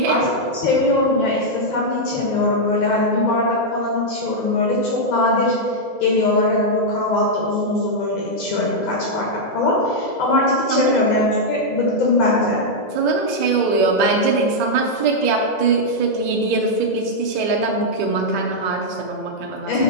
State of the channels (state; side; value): late; right; 2.0 ms